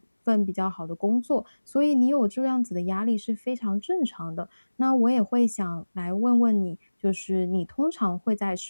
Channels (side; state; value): both; inverted; correlation -1.00